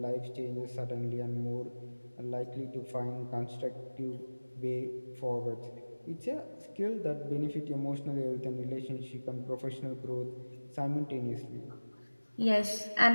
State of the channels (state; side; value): inverted; both; correlation -1.00